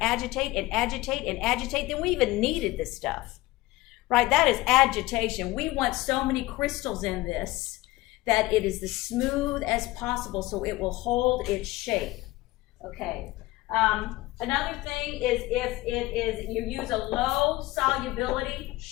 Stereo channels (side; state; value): right; quieter; 19.1 dB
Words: agitate and agitate and agitate? Then we even kneaded this stuff, right? That is agitation. We want so many crystals in this that it is as smooth as possible so it will hold its shape. Okay. Another thing is if it is, you use a low solubility